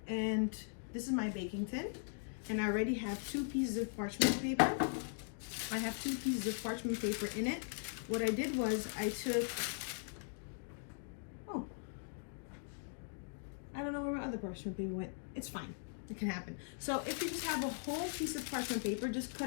and this is my baking tin, and I already have 2 pieces of parchment paper. I have 2 pieces of parchment paper in it. What I did was I took, I don't know where my other parchment paper went. It's fine, it can happen. So if you just have a whole piece of parchment paper, just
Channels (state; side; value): silent; right; digital silence